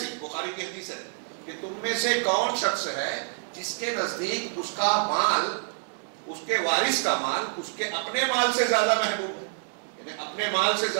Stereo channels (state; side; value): silent; left; 60 dB below the other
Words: بخاری کی حدیث ہے کہ تم میں سے کون شخص ہے جس کے نزدیک اس کا مال، اس کے وارث کا مال اس کے اپنے مال سے زیادہ محبوب ہے. یعنی اپنے مال سے